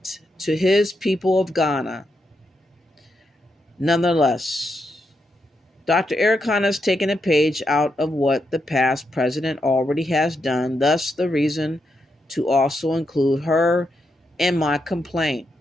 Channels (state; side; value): normal; both; correlation 0.83